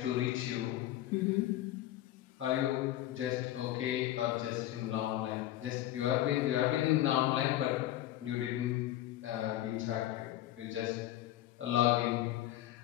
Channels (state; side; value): quieter; right; 13.9 dB